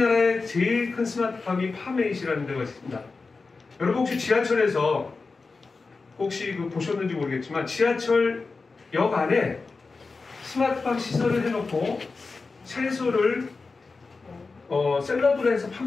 제일 큰 스마트팜이 파메잇이라는 데가 있습니다. 여러분 혹시 지하철에서 혹시 보셨는지 모르겠지만 지하철역 안에 스마트팜 시설을 해놓고 채소를 샐러드로 해서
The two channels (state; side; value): quieter; right; 4.1 dB